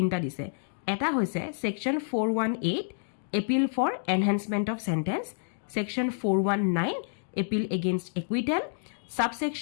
দিছে এটা হৈছে section 418 appeal for enhancement of sentence section 419 appeal against acquittal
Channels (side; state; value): right; silent; digital silence